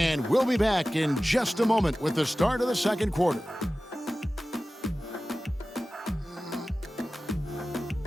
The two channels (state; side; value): normal; both; correlation 0.96